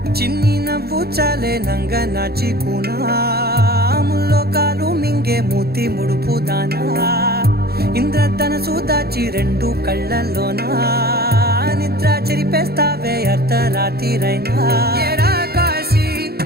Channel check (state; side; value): late; left; 0.46 ms